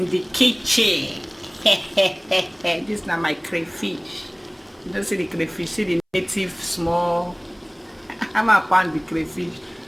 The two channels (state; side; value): identical; both; correlation 1.00